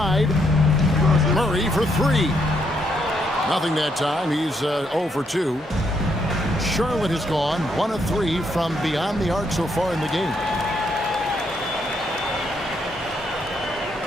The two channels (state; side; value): normal; both; correlation 0.75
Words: Murray for 3. Nothing that time. He's 0 for 2. Charlotte has gone 1 of 3 from beyond the arc so far in the game.